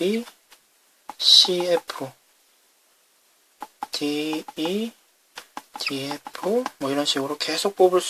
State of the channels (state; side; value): identical; both; correlation 1.00